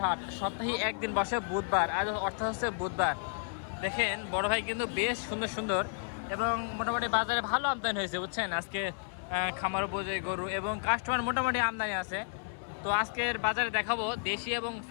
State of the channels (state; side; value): silent; right; 56 dB below the other